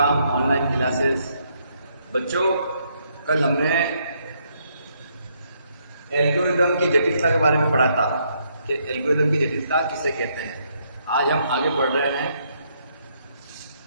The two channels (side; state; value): both; inverted; correlation -0.73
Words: online classes. बच्चों, कल हमने एल्गोरिदम की जटिलता के बारे में पढ़ा था कि एल्गोरिदम की जटिलता किसे कहते हैं। आज हम आगे बढ़ रहे हैं।